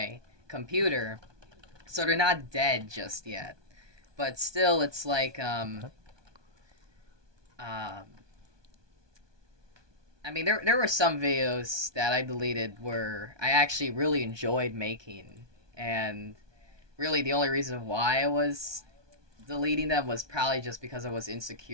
computer, so they're not dead just yet. But still, it's like um, I mean, there were some videos that I deleted where I actually really enjoyed making, and really the only reason why I was deleting them was probably just because I was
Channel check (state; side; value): late; left; 1.2 ms